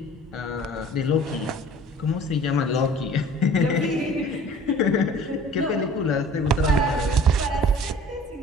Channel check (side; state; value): both; normal; correlation 0.47